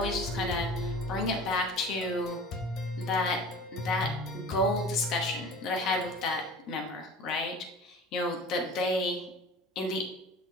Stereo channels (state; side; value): normal; both; correlation 0.40